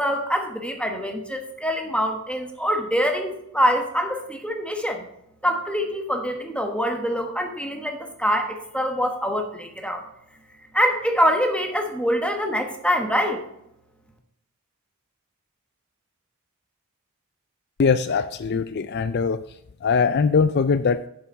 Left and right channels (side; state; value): both; normal; correlation 0.47